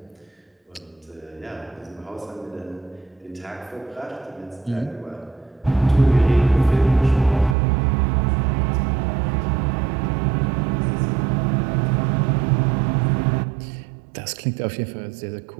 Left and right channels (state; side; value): drops out; left; at 7.6 s